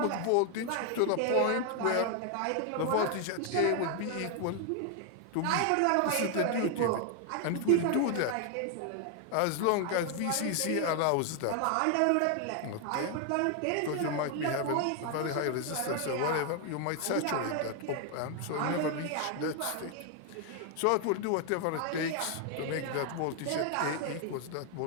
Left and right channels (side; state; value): both; different; correlation 0.00